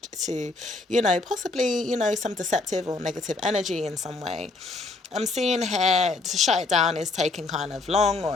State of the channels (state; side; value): quieter; right; 3.5 dB